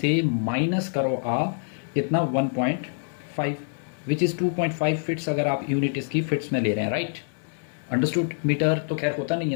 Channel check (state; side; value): silent; right; digital silence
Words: माइनस करो आप कितना 1.5 विच इज़ 2.5 फिट्स अगर आप यूनिट इसकी फिट्स में ले रहे हैं, राइट। अंडरस्टूड। मीटर तो खैर होता नहीं